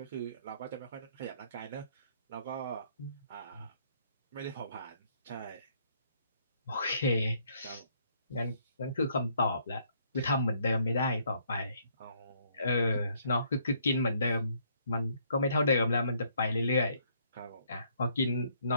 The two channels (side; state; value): both; inverted; correlation -0.67